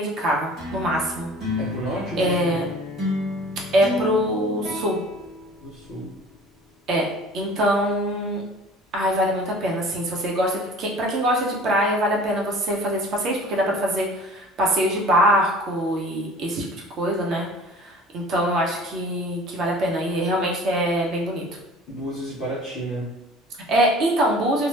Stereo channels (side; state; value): both; normal; correlation 0.46